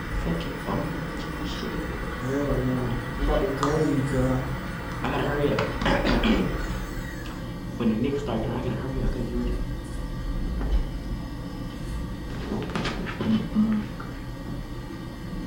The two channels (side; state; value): both; identical; correlation 1.00